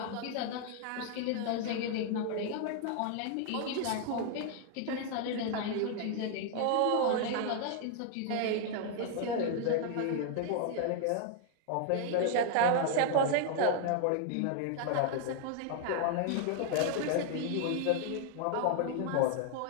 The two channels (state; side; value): different; both; correlation 0.00